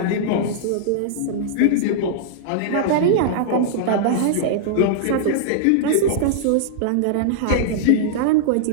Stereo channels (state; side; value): different; both; correlation -0.02